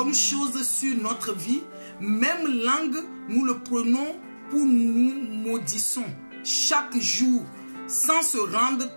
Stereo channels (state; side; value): inverted; both; correlation -1.00